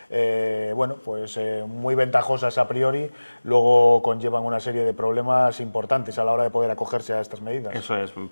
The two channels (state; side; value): inverted; both; correlation -1.00